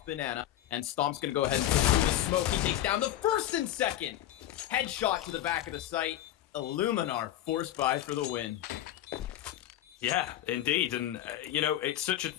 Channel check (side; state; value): right; quieter; 12.8 dB